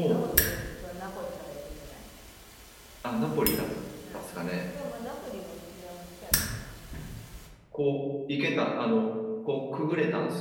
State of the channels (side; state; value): both; identical; correlation 1.00